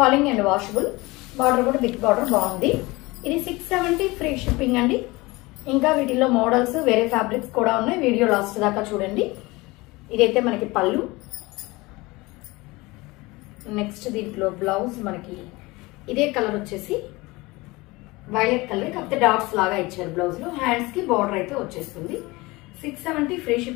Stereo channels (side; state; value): right; quieter; 22.4 dB